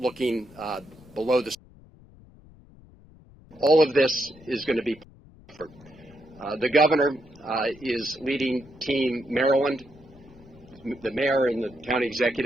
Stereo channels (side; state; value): left; noise; rumble, 24 dB below the sound